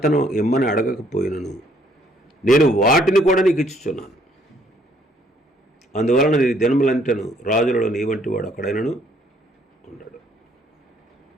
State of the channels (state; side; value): normal; both; correlation 0.65